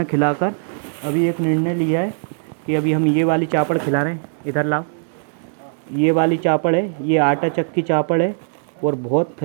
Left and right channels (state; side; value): silent; left; 66 dB below the other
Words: खिलाकर अभी एक निर्णय लिया है कि अभी हम ये वाली चापड़ खिला रहे हैं। इधर लाओ, ये वाली चापड़ है, ये आटा चक्की चापड़ है और बहुत